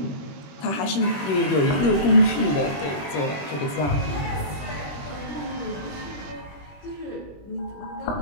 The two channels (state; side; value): late; right; 21 ms